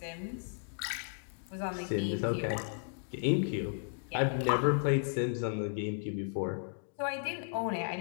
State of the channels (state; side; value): silent; right; digital silence